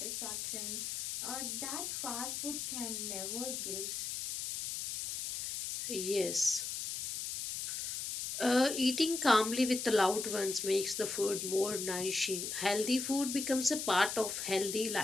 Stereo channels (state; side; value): noise; left; hiss, 4 dB below the sound